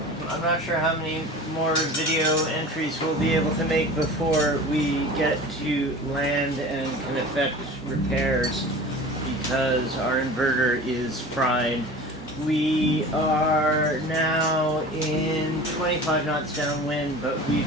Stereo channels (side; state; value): both; normal; correlation 0.38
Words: I'm not sure how many more video entries we'll be able to make before we get to land and can effect repairs because our inverter is fried. We are now in 25 knots downwind, but